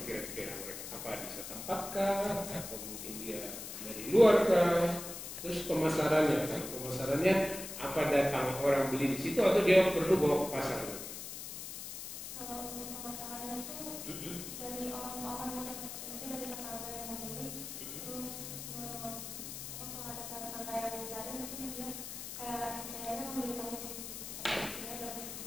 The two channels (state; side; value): noise; left; hiss, 8 dB below the sound